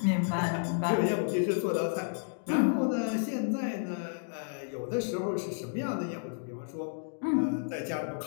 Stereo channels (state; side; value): silent; right; digital silence